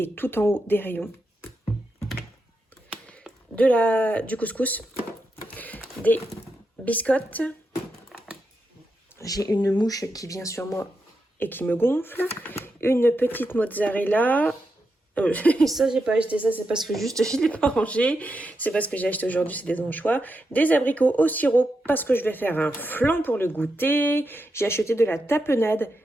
tout en haut des rayons. Du couscous, des biscottes. J'ai une mouche qui vient sur moi et qui me gonfle. Une petite mozzarella. Ça, j'ai pas acheté ça, c'est parce que juste je l'ai pas rangé. C'est parce que j'ai acheté aujourd'hui, c'est des anchois. Des abricots au sirop parce que je vais faire un flan pour le goûter. J'ai acheté de la tapenade,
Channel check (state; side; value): normal; both; correlation 0.86